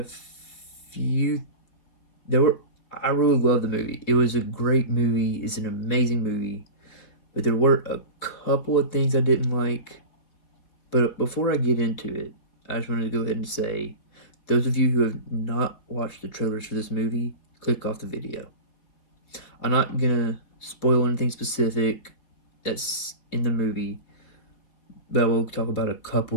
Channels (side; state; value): right; late; 4.5 ms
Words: few, there were, I really love the movie. It was a great movie. It's an amazing movie. But there were a couple of things I didn't like. But before I get into it, I just wanted to go ahead and say, those of you who have not watched the trailers for this movie, click off the video. I'm not gonna spoil anything specific that's in the movie, but I will talk about a